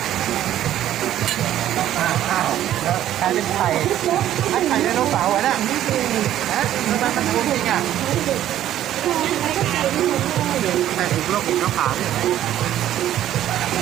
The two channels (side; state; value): left; quieter; 12.2 dB